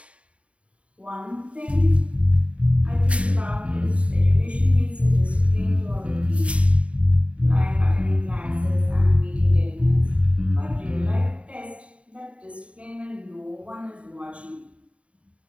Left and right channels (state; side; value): late; left; 0.063 ms